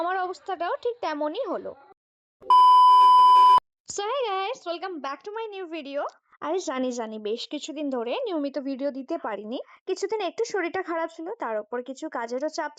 আমার অবস্থাটাও ঠিক তেমনই হলো। So hi guys, welcome back to my new video. আরে জানি বেশ কিছুদিন ধরে নিয়মিত ভিডিও দিতে পারিনি। কিছুদিন একটু শরীরটা খারাপ ছিল, তার উপর কিছু কাজেরও চাপ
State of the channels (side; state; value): both; identical; correlation 1.00